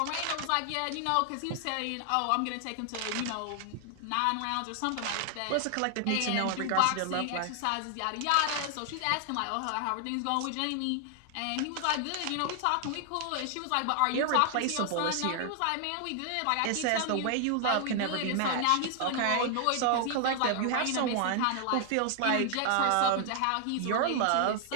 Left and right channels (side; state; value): both; different; correlation 0.00